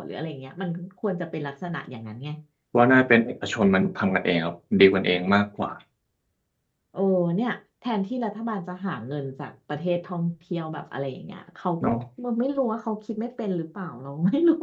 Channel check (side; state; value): both; identical; correlation 1.00